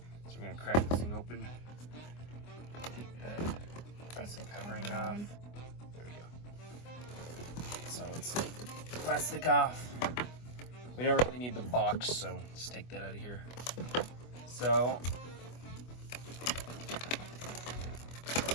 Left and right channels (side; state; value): right; late; 24 ms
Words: So we're gonna crack this thing open. Take the plastic covering off. There we go. So let's take the plastic off. We don't really need the box, so let's take that out of here. So